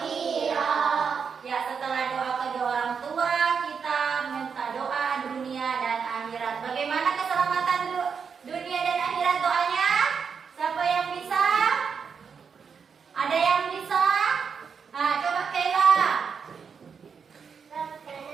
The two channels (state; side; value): quieter; left; 6.2 dB